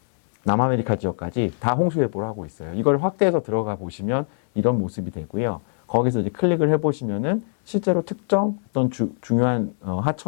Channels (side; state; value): right; silent; 63 dB below the other